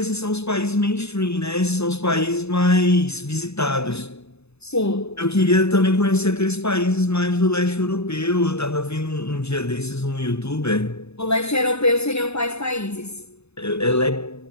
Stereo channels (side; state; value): right; late; 0.80 ms